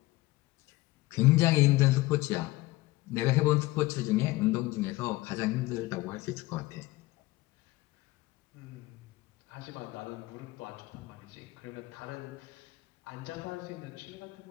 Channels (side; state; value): right; quieter; 19.3 dB